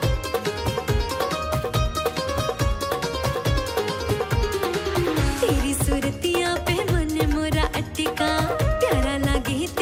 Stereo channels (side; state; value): both; identical; correlation 1.00